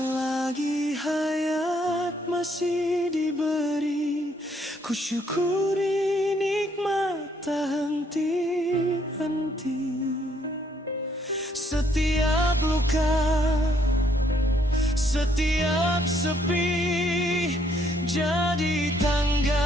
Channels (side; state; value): both; normal; correlation 0.69